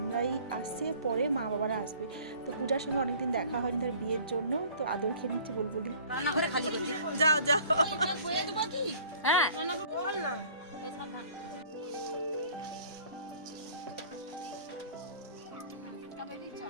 আসছে, পরে মা বাবারা আসবে। তো পূজার সঙ্গে অনেকদিন দেখা হয়নি তার বিয়ের জন্য, তো আদর খেয়ে নিচ্ছে বুলবুলি। যাও যাও হ্যাঁ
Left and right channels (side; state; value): both; inverted; correlation -0.51